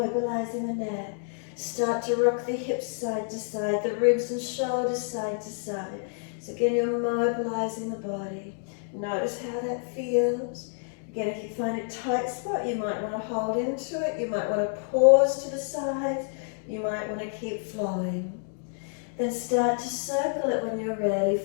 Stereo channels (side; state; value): right; silent; 59 dB below the other